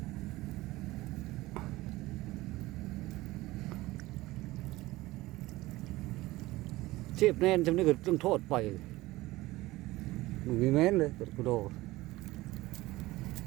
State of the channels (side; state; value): left; quieter; 18.8 dB